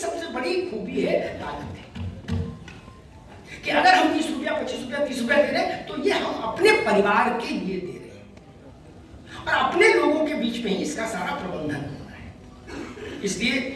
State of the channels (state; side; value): identical; both; correlation 1.00